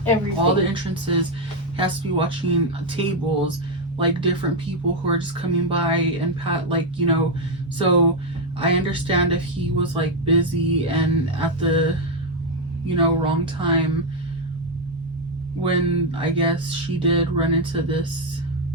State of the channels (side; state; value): both; normal; correlation 0.03